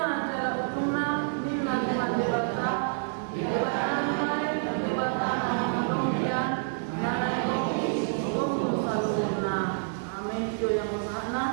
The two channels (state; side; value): silent; left; digital silence